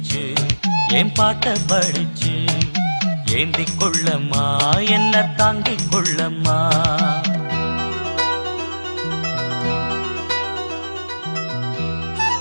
என் பாட்ட படிச்சு ஏந்திக் கொள்ளம்மா என்ன தாங்கிக் கொள்ளம்மா.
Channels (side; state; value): both; inverted; correlation -1.00